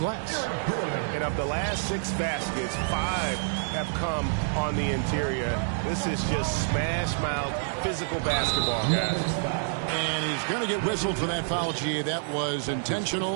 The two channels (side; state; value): left; silent; 60 dB below the other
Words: And of the last 6 baskets, 5 have come on the interior. This is just smash mouth physical basketball, guys. And he's going to get whistled for that foul, G. That was